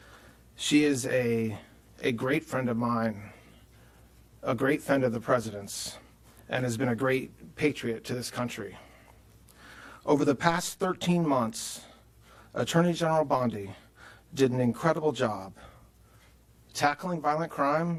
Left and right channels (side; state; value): both; identical; correlation 1.00